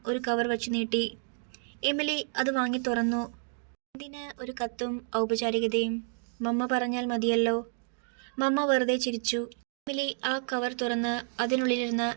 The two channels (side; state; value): left; silent; 58 dB below the other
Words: ഒരു കവർ വച്ചു നീട്ടി. എമിലി അത് വാങ്ങി തുറന്നു. എന്തിന് ഒരു കത്തും ഔപചാരികതയും? മമ്മ പറഞ്ഞാൽ മതിയല്ലോ. മമ്മ വെറുതെ ചിരിച്ചു. എമിലി ആ കവർ തുറന്ന് അതിനുള്ളിലിരുന്ന്